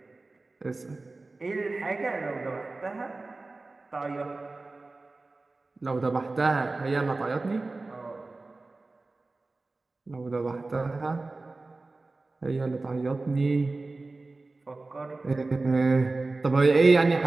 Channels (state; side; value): quieter; left; 3.4 dB